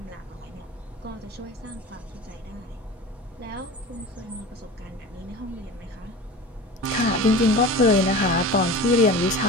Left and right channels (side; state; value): both; normal; correlation 0.34